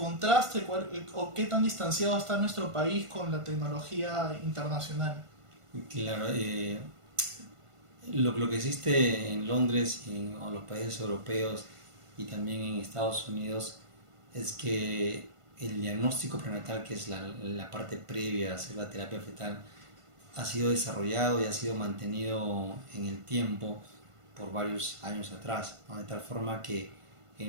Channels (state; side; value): late; left; 1.5 ms